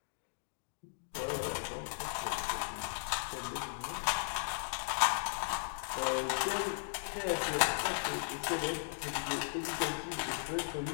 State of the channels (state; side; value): silent; right; digital silence